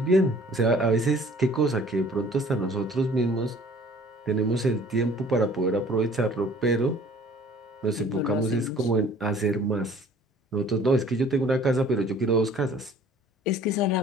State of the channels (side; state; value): both; normal; correlation 0.52